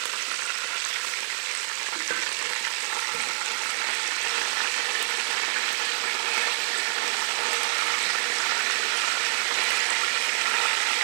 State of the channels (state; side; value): silent; left; digital silence